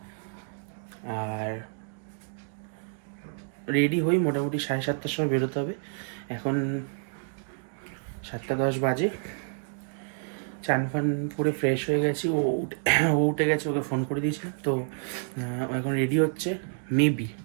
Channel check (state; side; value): silent; left; 59 dB below the other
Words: আর রেডি হই, মোটামুটি 7:30টার সময় বেরোতে হবে। এখন 7:10 বাজে। চান ফান পুরো ফ্রেশ হয়ে গেছি। ও উঠে গেছে, ওকে ফোন করে দিয়েছি। তো এখন রেডি হচ্ছে, মেবি,